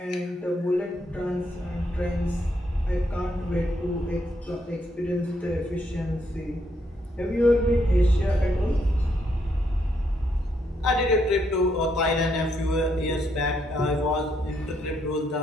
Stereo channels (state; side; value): normal; both; correlation 0.75